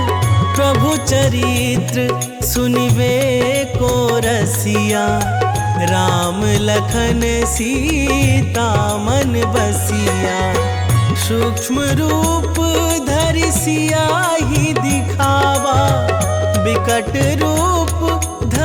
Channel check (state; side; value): identical; both; correlation 1.00